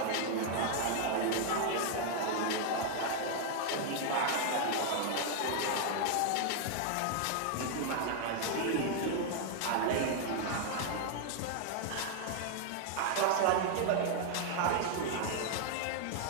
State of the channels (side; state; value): both; different; correlation 0.00